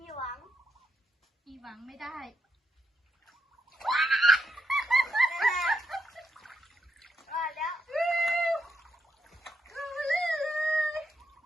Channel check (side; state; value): both; normal; correlation 0.81